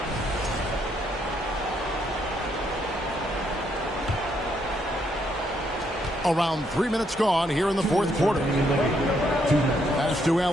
Around 3 minutes gone here in the fourth quarter. Pass to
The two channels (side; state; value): both; normal; correlation 0.74